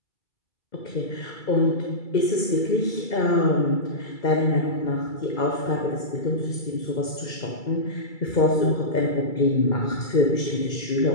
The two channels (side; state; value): right; late; 2.3 ms